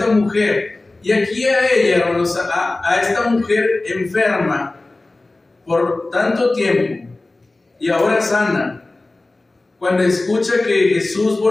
mujer, y aquí a ella, hermanos, a esta mujer enferma por tanto tiempo y ahora sana, cuando escucha que Jesús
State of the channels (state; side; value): quieter; right; 3.0 dB